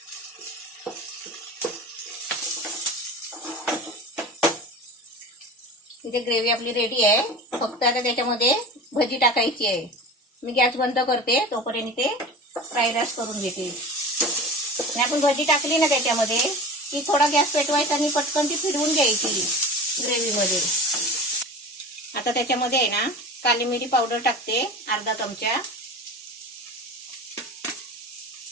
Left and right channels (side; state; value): both; normal; correlation 0.34